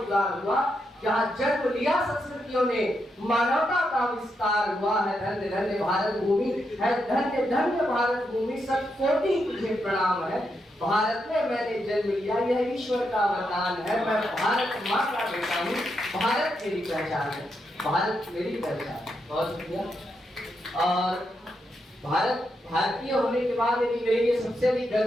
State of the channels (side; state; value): both; normal; correlation 0.83